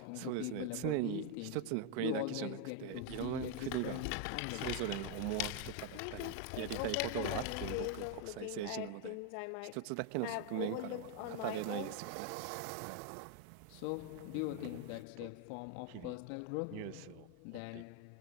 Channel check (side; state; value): both; different; correlation 0.01